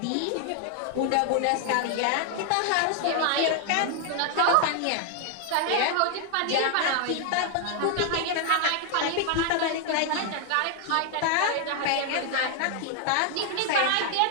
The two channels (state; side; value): different; both; correlation 0.00